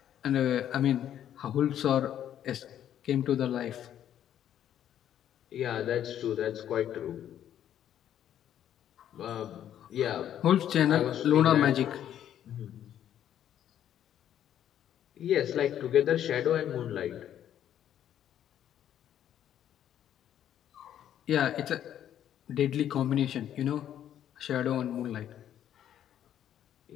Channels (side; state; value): right; quieter; 10.6 dB